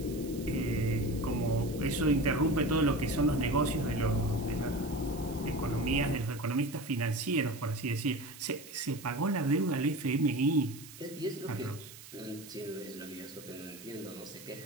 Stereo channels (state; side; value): noise; right; hiss, 17 dB below the sound